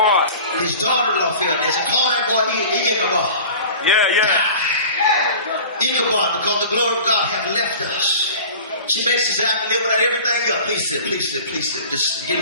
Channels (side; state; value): both; inverted; correlation -0.40